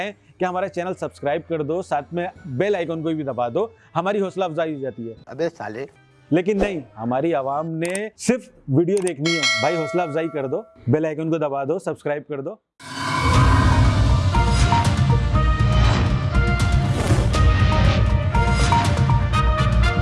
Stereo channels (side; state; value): both; identical; correlation 1.00